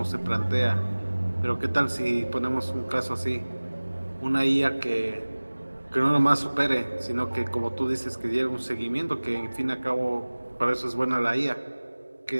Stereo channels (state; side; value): inverted; both; correlation -1.00